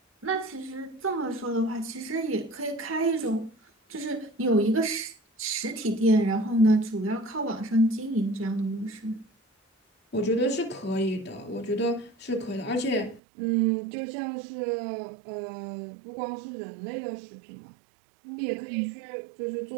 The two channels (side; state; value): left; drops out; at 13.2 s